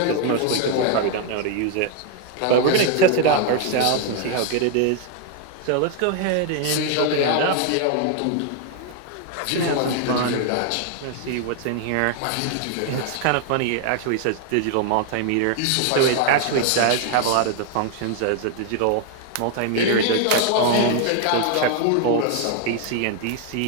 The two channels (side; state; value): both; different; correlation 0.00